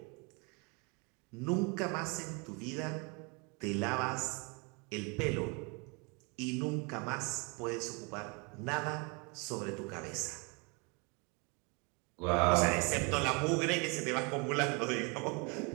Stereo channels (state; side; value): quieter; left; 31.5 dB